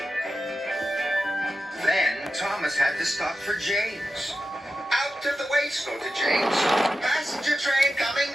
Then Thomas had to stop for James. "Out of the way, snorted James. Passenger train coming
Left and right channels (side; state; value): both; normal; correlation 0.91